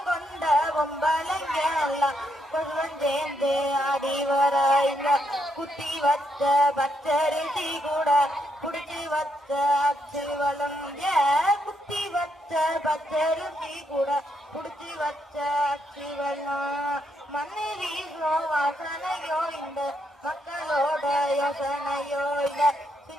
கொண்ட பொம்பளைங்க எல்லாம் கொண்டு வந்தேந்து ஆடி வர இந்த குத்தி வச்ச பச்சரிசி கூட குடிச்சு வச்ச அச்சு வளம் குத்தி வச்ச பச்சரிசி கூட குடிச்சு வச்ச அச்சு வெள்ளம் மண்ணு வீசோ வாசனையோ இந்த மக்களோட யோசனையோ இல்ல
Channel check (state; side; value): normal; both; correlation 0.77